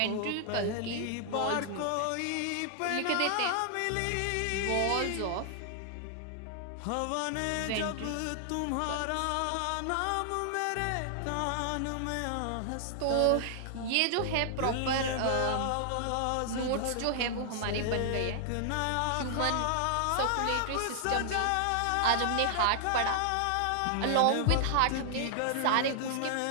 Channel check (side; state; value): both; different; correlation -0.01